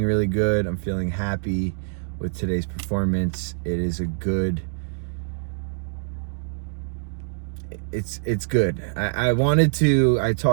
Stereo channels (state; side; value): silent; left; digital silence